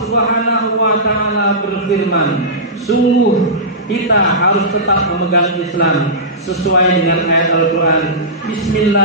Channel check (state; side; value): normal; both; correlation -0.18